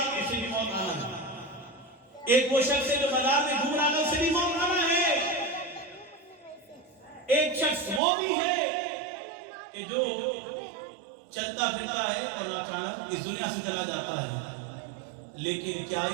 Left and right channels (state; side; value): drops out; left; at 8.0 s